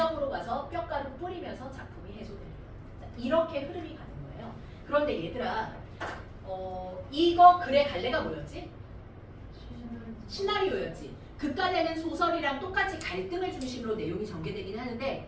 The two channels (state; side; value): identical; both; correlation 1.00